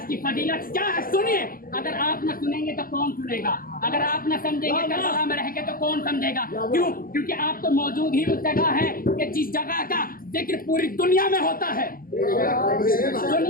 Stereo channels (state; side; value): late; right; 0.42 ms